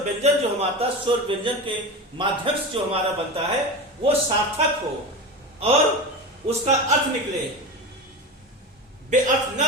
व्यंजन जो हमारा स्वर व्यंजन के माध्यम से जो हमारा बनता है वो सार्थक हो और उसका अर्थ निकले, बेअर्थ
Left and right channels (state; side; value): normal; both; correlation 0.24